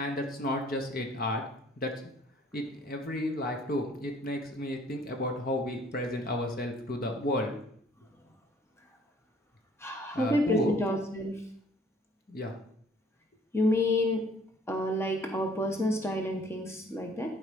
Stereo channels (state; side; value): normal; both; correlation 0.58